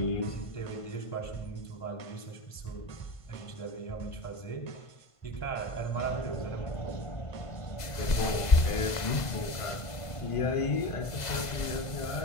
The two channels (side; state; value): right; late; 2.0 ms